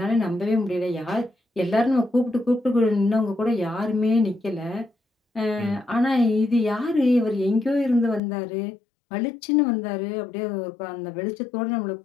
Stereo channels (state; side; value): drops out; right; at 8.2 s